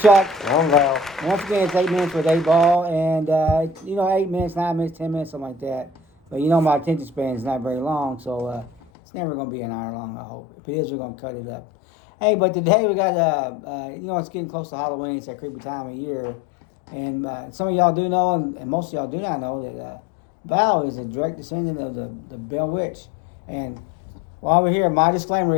I'm Val. Once again, it's 8 minutes with 8 ball, and 8 minutes, 9 minutes, 10 minutes, something like that. But my attention span is not very long, so it's never going to be an hour long. I hope. If it is, we're going to cut it up. Hey, but today we got it's getting close to Halloween. It's that creepy time of year, and some of y'all do know, and most of y'all do not know that Val is a direct descendant of the Bell Witch. And while we're here, my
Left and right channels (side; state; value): right; drops out; at 8.8 s